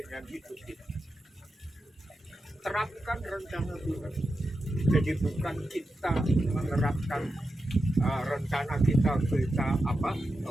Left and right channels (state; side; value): normal; both; correlation 0.89